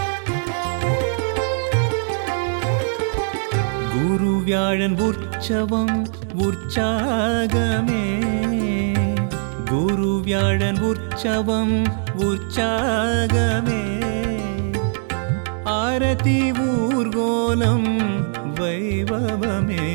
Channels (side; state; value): left; silent; digital silence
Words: गुरुव्याळन उற்சவம் உற்சாகமே गुरुव्याळन உற்சவம் உற்சாகமே आरती ஊர்கோலம் வைபவமே